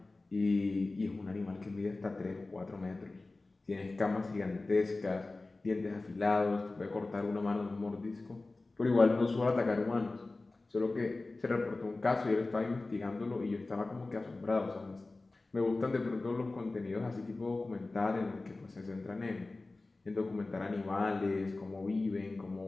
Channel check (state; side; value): quieter; right; 3.2 dB